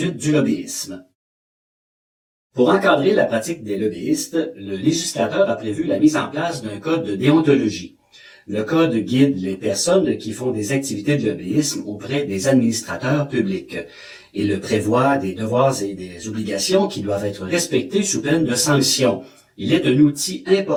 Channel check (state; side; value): identical; both; correlation 1.00